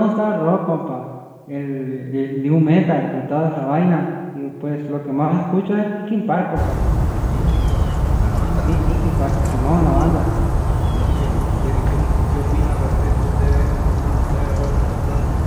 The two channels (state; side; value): identical; both; correlation 1.00